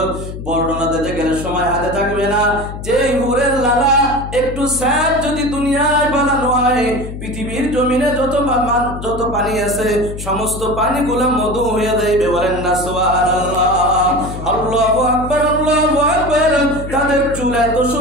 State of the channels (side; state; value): left; noise; hum, 9 dB below the sound